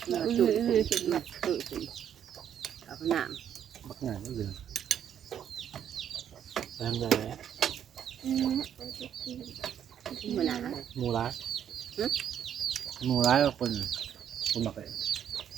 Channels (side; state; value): left; quieter; 9.3 dB